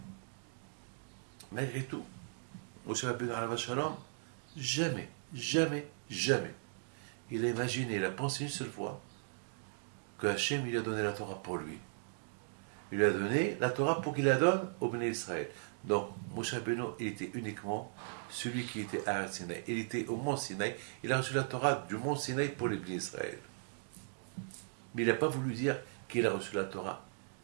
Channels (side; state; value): left; silent; digital silence